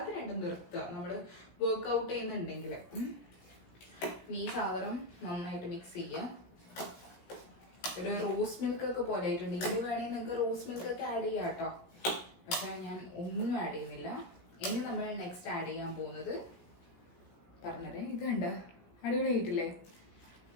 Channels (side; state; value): right; late; 17 ms